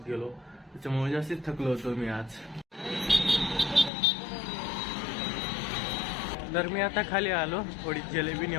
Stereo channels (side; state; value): right; drops out; at 3.9 s